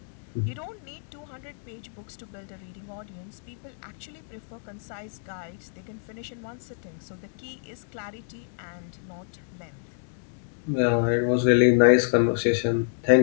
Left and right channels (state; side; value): silent; right; digital silence